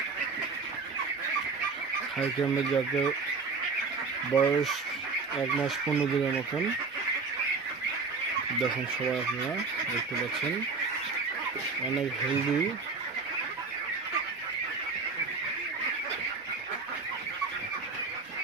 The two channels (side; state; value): left; quieter; 4.4 dB